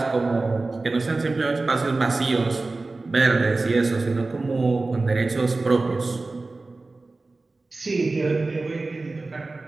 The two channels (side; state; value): left; quieter; 3.4 dB